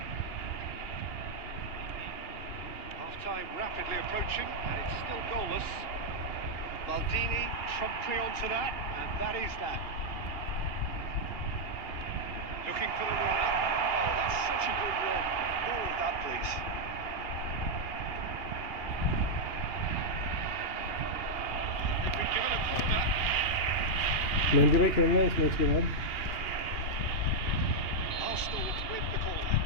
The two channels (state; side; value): late; right; 2.8 ms